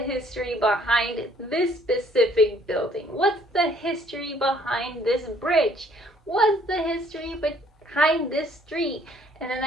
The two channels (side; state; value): both; normal; correlation 0.61